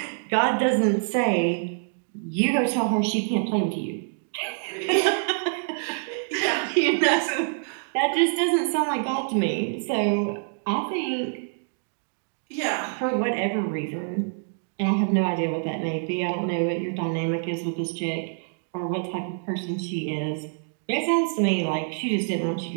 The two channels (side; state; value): left; silent; digital silence